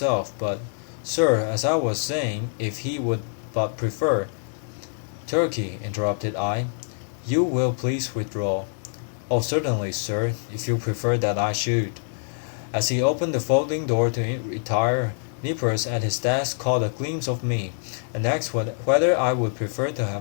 but, sir, as I was saying, if he would but prefer—" "Turkey," interrupted I, "you will please withdraw." "Oh, certainly, sir, if you prefer that I should." As he opened the folding door to retire, Nippers at his desk caught a glimpse of me, and asked whether I would prefer to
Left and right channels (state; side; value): silent; right; digital silence